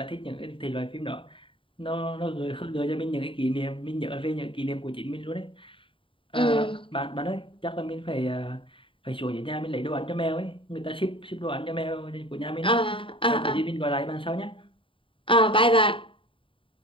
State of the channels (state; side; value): late; right; 0.25 ms